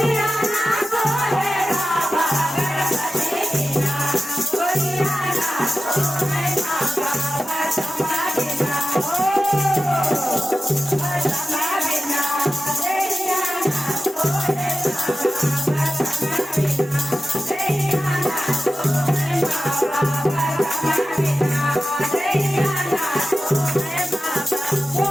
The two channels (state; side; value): normal; both; correlation 0.93